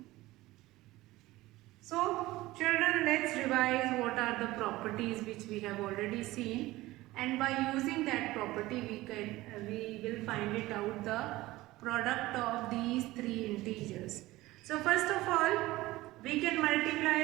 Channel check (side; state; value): left; quieter; 18.2 dB